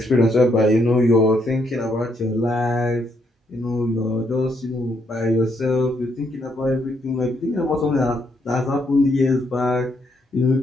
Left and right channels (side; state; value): both; normal; correlation 0.75